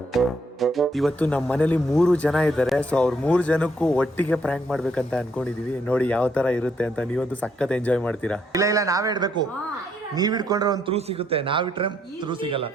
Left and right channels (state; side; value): normal; both; correlation 0.72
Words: ಇವತ್ತು ನಮ್ಮ ಮನೇಲಿ 3 ಜನ ಇದ್ದಾರೆ. ಸೊ ಅವ್ರ 3 ಜನಕ್ಕೂ ಒಟ್ಟಿಗೆ ಪ್ರ್ಯಾಂಕ್ ಮಾಡ್ಬೇಕಂತ ಅನ್ಕೊಂಡಿದೀವಿ. ನೋಡಿ ಯಾವ ತರ ಇರುತ್ತೆ ಅಂತ. ನೀವಂತೂ ಸಖತ್ ಎಂಜಾಯ್ ಮಾಡ್ತೀರಾ. ಇಲ್ಲ ನಾವೇ ಇಡ್ಬೇಕು. ನೀವ್ ಇಟ್ಕೊಂಡ್ರೆ ಒಂದು ಥ್ರೂ ಸಿಗುತ್ತೆ, ನಾವಿಟ್ರೆ ಥ್ರೂ ಸಿಗಲ್ಲ.